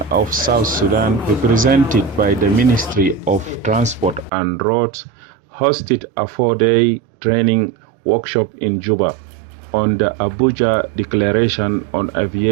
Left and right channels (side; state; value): left; drops out; at 4.3 s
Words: of South Sudan, represented by the Ministry of Transport and Roads, hosted a 4-day training workshop in Juba on the Abuja Declaration on